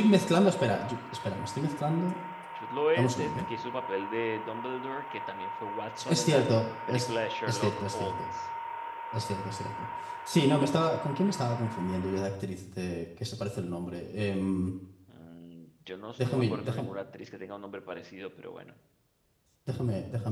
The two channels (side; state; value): both; identical; correlation 1.00